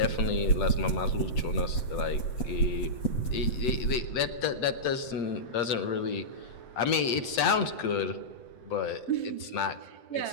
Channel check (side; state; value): right; late; 7.9 ms